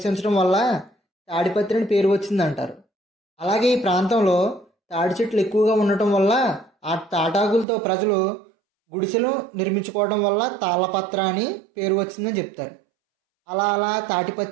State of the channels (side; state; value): left; drops out; at 7.7 s